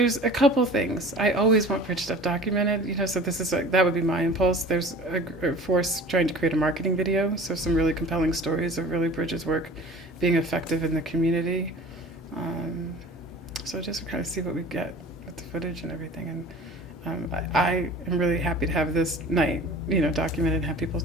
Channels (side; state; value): both; normal; correlation 0.43